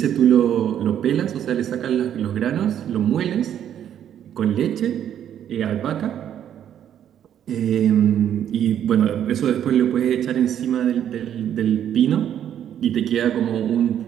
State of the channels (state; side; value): quieter; left; 10.0 dB